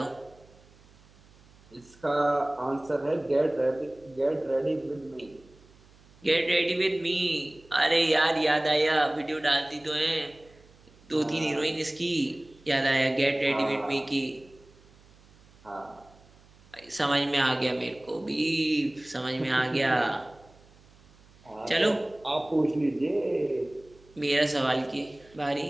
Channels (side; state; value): right; noise; hum, 27 dB below the sound